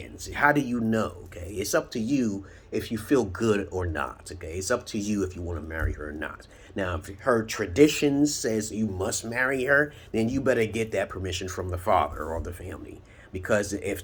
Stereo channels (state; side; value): identical; both; correlation 1.00